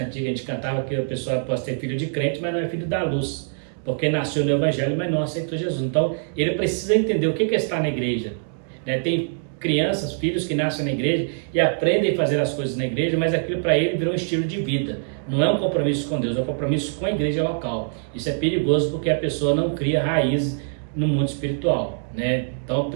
antiga que a gente cantava que a pessoa pode ser filho de crente, mas não é filho da luz, porque nasceu no evangelho, mas não aceitou Jesus. Então ele precisa entender o que é estar na igreja, né? Tem crianças, filhos que nascem na igreja e aprendem a fazer as coisas na igreja, mas aquilo para ele virou um estilo de vida. Não é um compromisso com Deus, é um compromisso com a igreja local. Isso é perigoso porque a pessoa não cria raízes no mundo espiritual, né? Então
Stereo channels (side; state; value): left; silent; digital silence